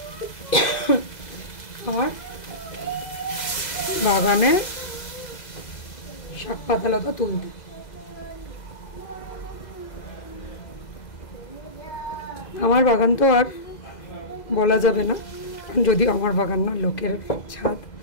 আমার বাগানে শাক পাতালতা তুলতে। আমার বাগান তো আর বলা যাবে না, যদিও আমার বাগান না, লোকের ছাদ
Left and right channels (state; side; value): late; right; 2.0 ms